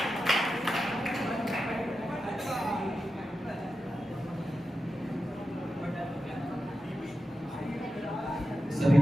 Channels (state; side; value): normal; both; correlation 0.91